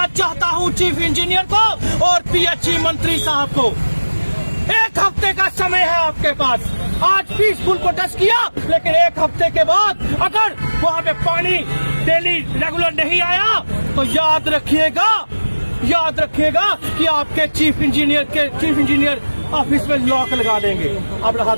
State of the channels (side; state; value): both; inverted; correlation -1.00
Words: चाहता हूं चीफ इंजीनियर को और PHE मंत्री साहब को। 1 हफ्ते का समय है आपके पास। आज पीसफुल प्रोटेस्ट किया, लेकिन 1 हफ्ते के बाद अगर वहां पे पानी डेली रेगुलर नहीं आया तो याद रखिएगा कि आपके चीफ इंजीनियर ऑफिस में लॉक लगा देंगे। अब रहा